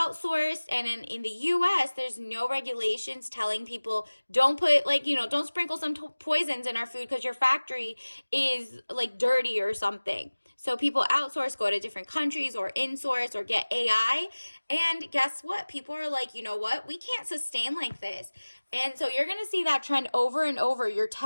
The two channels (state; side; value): inverted; both; correlation -1.00